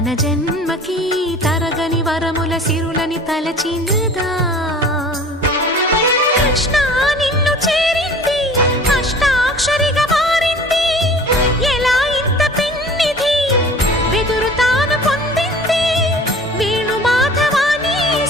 జన్మకి తరగని వరముల సిరులని తలచినదా కృష్ణ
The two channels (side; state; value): both; normal; correlation 0.45